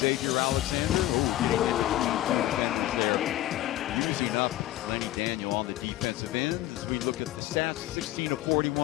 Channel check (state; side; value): quieter; right; 14.9 dB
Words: Alexander. There. Using up Lenny Daniel on the defensive end. As we look at the stats, 16 of